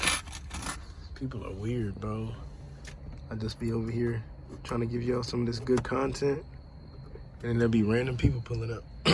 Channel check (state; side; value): identical; both; correlation 1.00